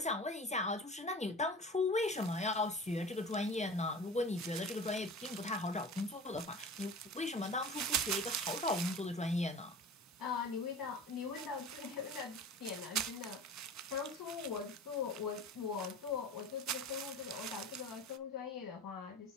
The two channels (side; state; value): both; normal; correlation 0.37